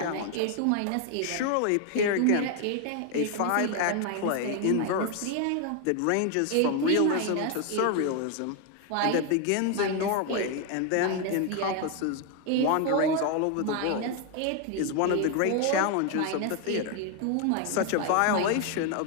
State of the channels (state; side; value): different; both; correlation 0.01